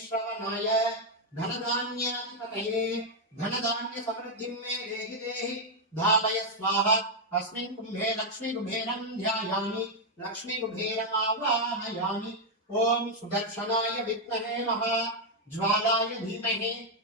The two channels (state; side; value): normal; both; correlation 0.00